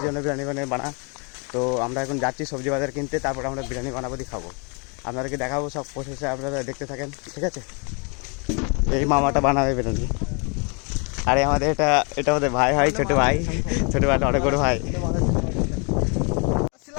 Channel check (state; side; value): quieter; right; 34.3 dB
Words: জন্য বিরিয়ানি বানা। তো আমরা এখন যাচ্ছি সবজি বাজার কিনতে, তারপর আমরা বিরিয়ানি বানাবো দিয়ে খাবো। আপনাদেরকে দেখাবো সব প্রসেসে, আপনারা দেখতে থাকেন, ঠিক আছে। এই মামাটা বানাবে বিরিয়ানি। আরে আমাদের এটা আমাদের ভাই হয়, ছোটো ভাই অনেক বড় ভাই।